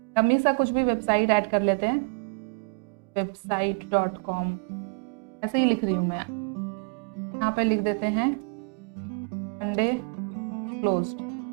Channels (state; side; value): quieter; left; 38.4 dB